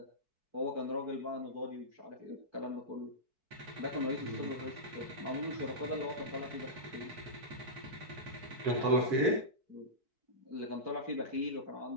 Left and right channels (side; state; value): left; late; 4.6 ms